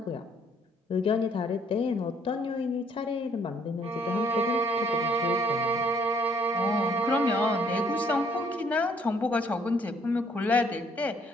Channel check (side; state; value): both; normal; correlation 0.64